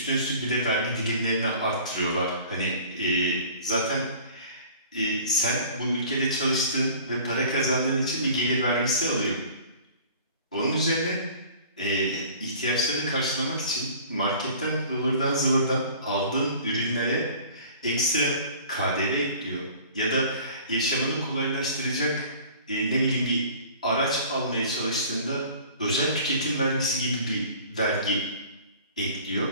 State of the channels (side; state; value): both; inverted; correlation -0.47